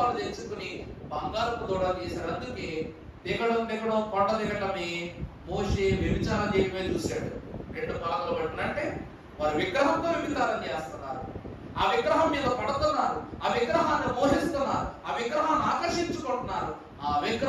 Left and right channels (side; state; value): both; identical; correlation 1.00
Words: తెచ్చుకుని బంగారపు దూడ తీశారు. అందుకే దిగడం కొండ దిగటమే మోషే వ్యభిచారం చేయడమే చూశాడు. 2 పలకలు పట్టినంటే వారు విగ్రహంతో వ్యభిచారం చేస్తున్నారు, ఆ విగ్రహం మీద పడుతున్నారు, ఆ విగ్రహాన్ని మోహిస్తున్నారు, ఆ విగ్రహాన్ని ఆకర్షించుకుంటున్నారు, ఆ